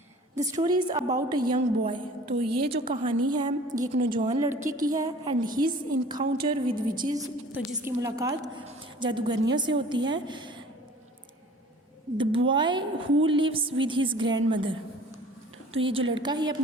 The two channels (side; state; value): both; normal; correlation 0.47